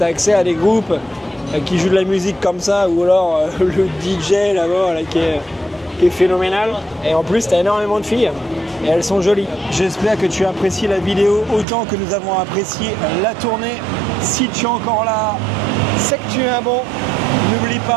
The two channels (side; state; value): left; drops out; at 11.7 s